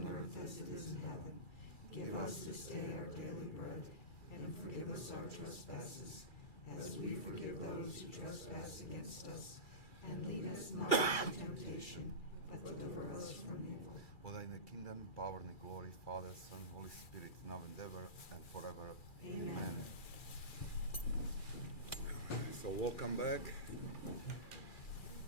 earth as it is in heaven. Give us this day our daily bread, and forgive us our trespasses, as we forgive those who trespass against us. And lead us not into temptation, but deliver us from evil. For thine is the kingdom, power, and the glory, Father, Son, Holy Spirit, now and ever, and forever. Amen. So welcome back.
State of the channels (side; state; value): right; late; 2.3 ms